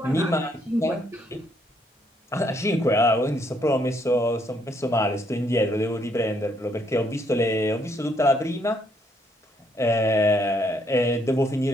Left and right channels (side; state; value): both; normal; correlation 0.71